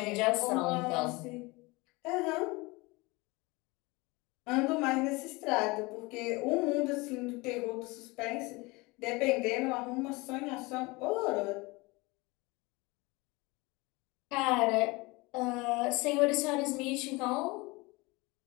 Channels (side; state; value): right; quieter; 24.3 dB